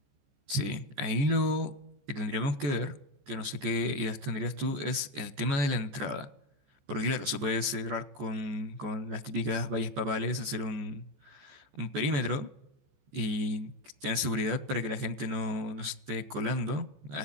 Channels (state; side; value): late; left; 14 ms